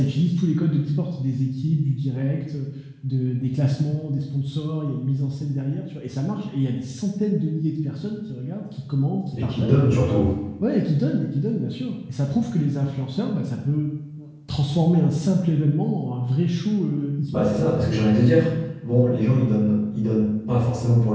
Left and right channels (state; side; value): identical; both; correlation 1.00